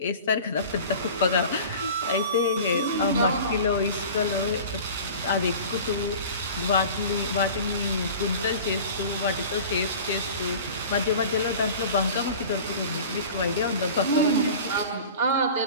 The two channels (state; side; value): inverted; both; correlation -0.39